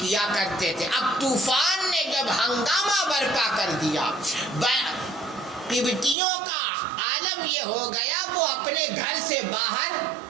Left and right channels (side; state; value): left; drops out; at 6.2 s